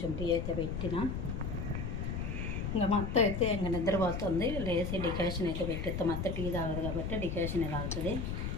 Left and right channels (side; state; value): left; noise; rumble, 3 dB below the sound